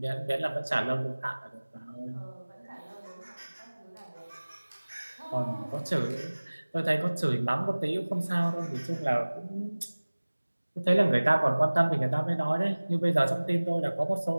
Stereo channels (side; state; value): both; inverted; correlation -1.00